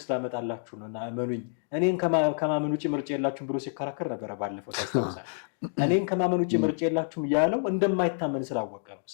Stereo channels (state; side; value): silent; right; digital silence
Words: ላመጣላችሁ ነው እና እመኑኝ፣ እኔን ከማመን ውጭ ምርጫ የላችሁም ብሎ ሲከራከር ነበረ ባለፈው ታስታውሳል። እኔን ከማመን ውጭ ምርጫ የላችሁም ያለው እንደማይታመን ስላወቀ ነው፣